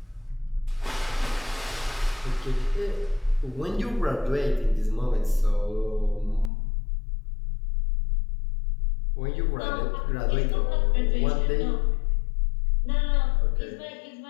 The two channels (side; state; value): right; drops out; at 6.5 s